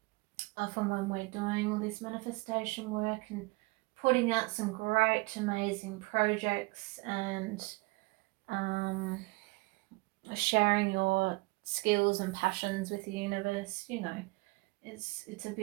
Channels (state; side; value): quieter; left; 25.0 dB